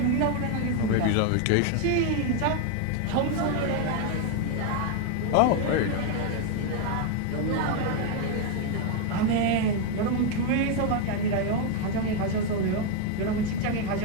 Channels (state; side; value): different; both; correlation 0.01